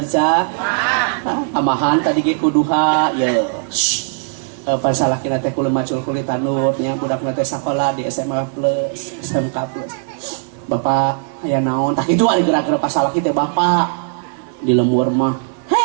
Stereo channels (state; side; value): silent; left; digital silence